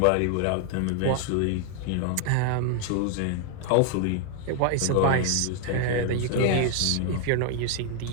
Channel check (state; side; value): different; both; correlation 0.00